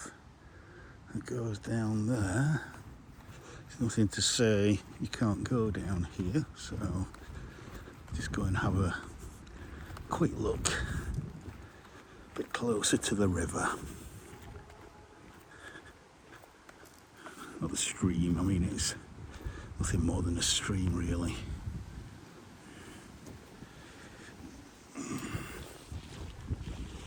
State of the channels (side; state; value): both; identical; correlation 1.00